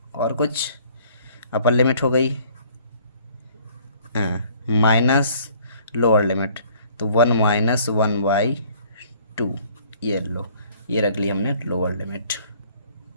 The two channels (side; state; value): both; inverted; correlation -0.57